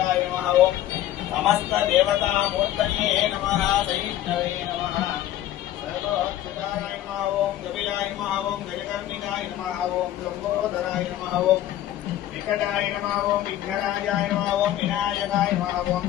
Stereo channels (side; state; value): right; quieter; 13.1 dB